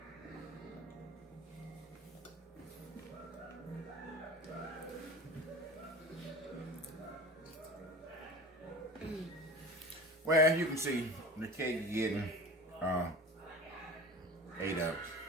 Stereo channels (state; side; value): normal; both; correlation 0.36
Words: Well, you can see the cake is getting ate up.